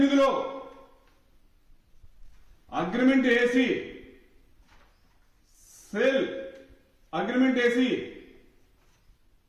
అగ్రిమెంట్ వేసి సేల్ అగ్రిమెంట్ వేసి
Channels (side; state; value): both; identical; correlation 1.00